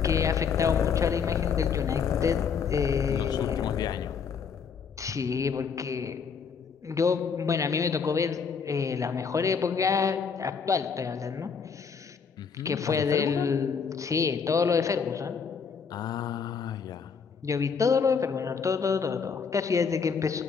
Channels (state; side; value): quieter; right; 6.1 dB